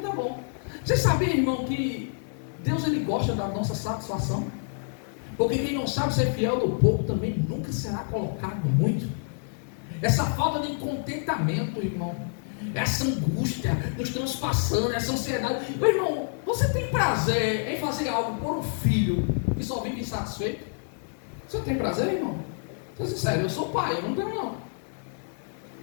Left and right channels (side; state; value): right; silent; 60 dB below the other